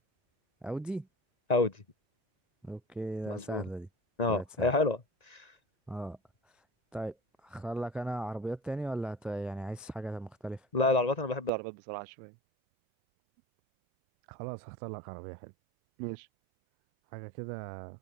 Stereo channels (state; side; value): drops out; left; at 11.5 s